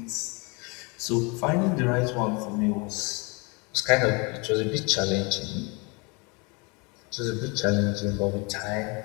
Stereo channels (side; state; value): right; quieter; 30.0 dB